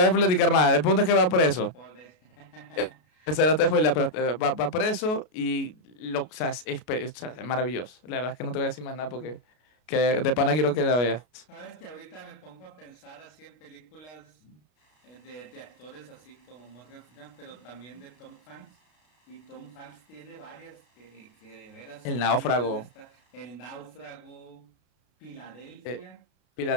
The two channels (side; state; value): right; late; 33 ms